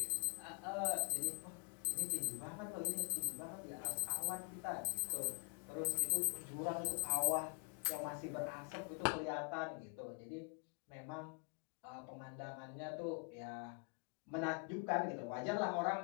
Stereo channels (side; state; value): right; quieter; 35.1 dB